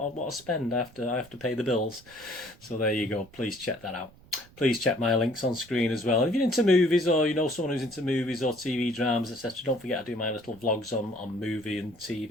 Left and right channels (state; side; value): noise; right; rumble, 25 dB below the sound